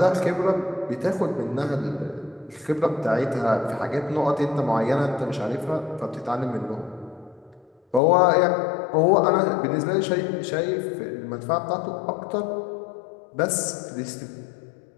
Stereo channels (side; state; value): right; drops out; at 8.0 s